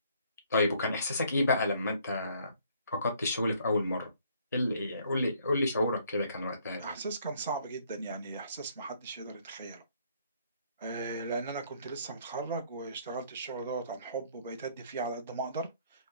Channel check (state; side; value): inverted; both; correlation -0.63